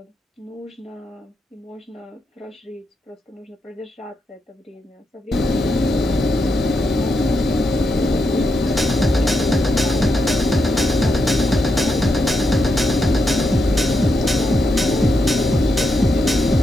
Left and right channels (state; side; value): normal; both; correlation 0.83